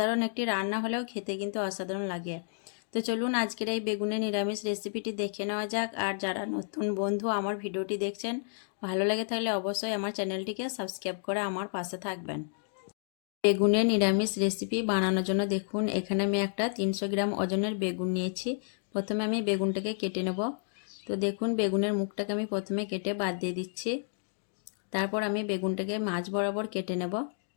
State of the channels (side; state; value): right; silent; digital silence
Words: একটি রান্না হলেও খেতে কিন্তু অসাধারণ লাগে। তো চলুন আজকের এই বেগুনের নিরামিষ রেসিপিটি দেখে নেওয়া যাক। আর যারা নতুন বন্ধু আমার ভিডিওটি দেখছেন, ভালো লাগে তাহলে অবশ্যই আমার চ্যানেলটিকে সাবস্ক্রাইব করে আমার পাশে থাকবেন। বেগুনের নিরামিষ রেসিপি বানানোর জন্য দেখুন এখানে আমি একটা 300 গ্রাম ওজনের বেগুন নিয়েছি। প্রথমে আমি বেগুনটাকে কেটে নেব। তো দেখুন বেগুনের মুখটাকে আমি প্রথমে কেটে বাদ দিয়ে দিচ্ছি। তারপর আমি বেগুনটাকে মাঝ বরাবর কেটে নেব।